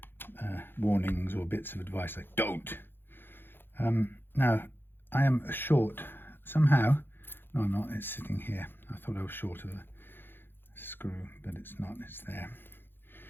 warnings or bits of advice like don't. Now I am short somehow. No, I'm not. It's sitting here. I thought I was short of the screw, but it's not. It's there.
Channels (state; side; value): late; right; 0.10 ms